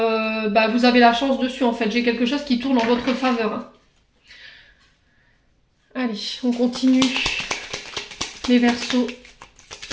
bah, vous avez la chance dessus, en fait. J'ai quelque chose qui tourne en votre faveur, hein. Allez, on continue. Les Verseaux.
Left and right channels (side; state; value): both; identical; correlation 1.00